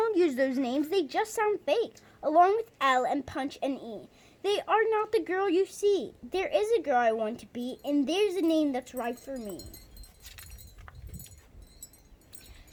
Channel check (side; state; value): both; identical; correlation 1.00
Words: use those names. They just sound fake. Along with L and Punch and E. They are not the girl you see. There is a girl I want to be, and there's a name that's right for me.